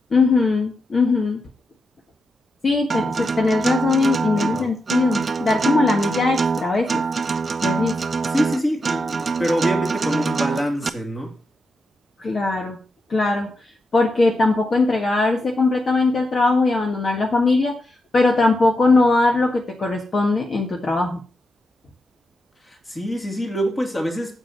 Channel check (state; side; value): normal; both; correlation 0.86